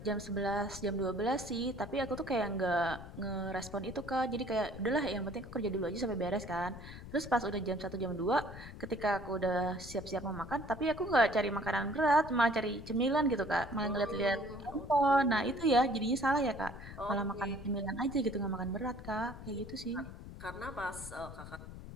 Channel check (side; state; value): left; noise; rumble, 13 dB below the sound